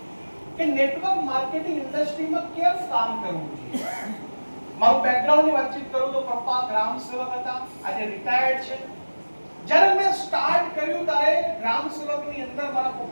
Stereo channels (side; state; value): both; inverted; correlation -1.00